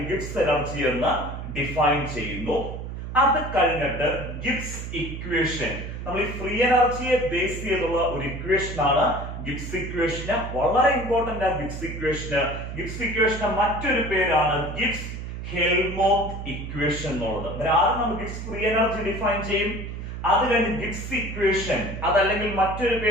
ഗിബ്സ് എനർജി എന്ന് ഡിഫൈൻ ചെയ്യുന്നു. അത് കഴിഞ്ഞിട്ട് ഗിബ്സ് ഇക്വേഷൻ, നമ്മൾ ഈ ഫ്രീ എനർജിയെ ബേസ് ചെയ്തുള്ള ഒരു ഇക്വേഷൻ ആണ് ഗിബ്സ് ഇക്വേഷന്. വളരെ ഇമ്പോർട്ടന്റ് ആണ് ഗിബ്സ് ഇക്വേഷന്. ഗിബ്സ് ഇക്വേഷന് മറ്റൊരു പേരാണ് ഗിബ്സ് ഹെൽമോത്ത് ഇക്വേഷൻ എന്നുള്ളത്. ആദ്യം നമ്മൾ ഗിബ്സ് ഫ്രീ എനർജി ഡിഫൈൻ ചെയ്യും. അത് കഴിഞ്ഞ് ഗിബ്സ് ഇക്വേഷൻ, അതല്ലെങ്കിൽ മറ്റൊരു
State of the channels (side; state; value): right; noise; hum, 7 dB below the sound